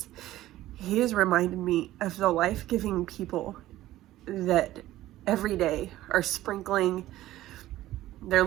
he has reminded me of the life-giving people that every day are sprinkling their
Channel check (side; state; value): left; quieter; 15.1 dB